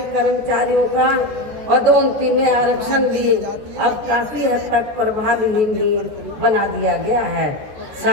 कर्मचारियों का पदोन्नति में आरक्षण भी अब काफी हद तक प्रभावहीन ही बना दिया गया है।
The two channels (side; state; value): left; late; 14 ms